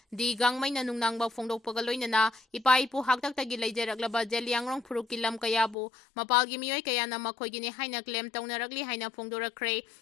di gangmai na nungnangba phongdokpaga loinana ipaipu haktaktagi leijaraklaba Zeliangrong Phurup ki lam kaya bu mapal gi Mioi kaya na makhoigini haina claim tawnaragli haina phongdorakre.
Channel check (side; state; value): right; drops out; at 5.8 s